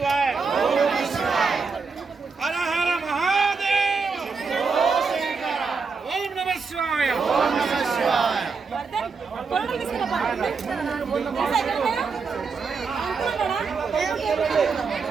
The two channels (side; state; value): left; quieter; 4.9 dB